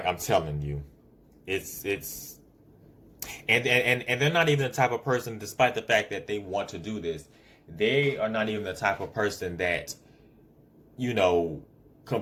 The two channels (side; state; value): both; identical; correlation 1.00